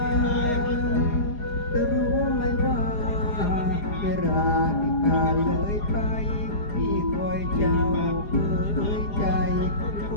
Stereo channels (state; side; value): late; right; 4.9 ms